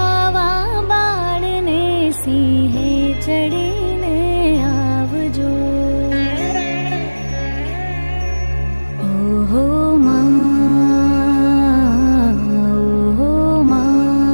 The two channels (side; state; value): both; inverted; correlation -1.00